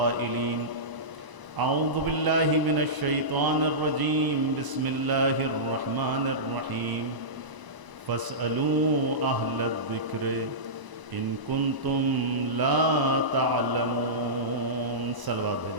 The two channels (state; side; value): late; left; 1.0 ms